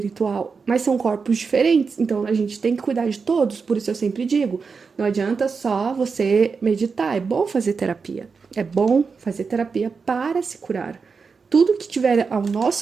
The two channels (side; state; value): left; quieter; 5.1 dB